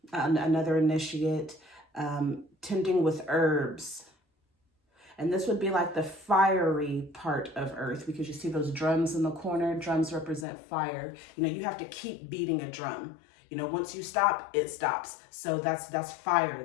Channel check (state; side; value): drops out; right; at 10.5 s